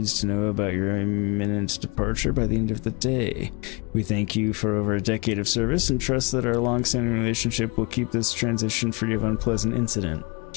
to know about your imminent departure by the end of the day. We thank you for over a decade of service and trust that our long-standing relationship will keep this transition free of unpleasant incident.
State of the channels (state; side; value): quieter; right; 29.9 dB